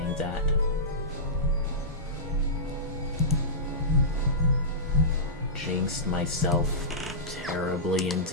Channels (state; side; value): normal; both; correlation -0.17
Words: that. Jinxed myself terribly